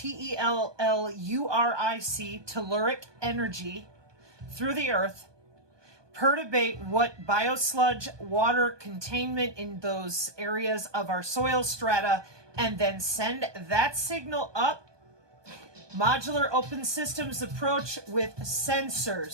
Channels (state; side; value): late; left; 1.2 ms